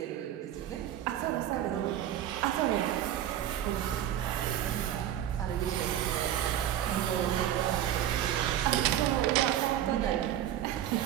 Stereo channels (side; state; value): left; quieter; 11.3 dB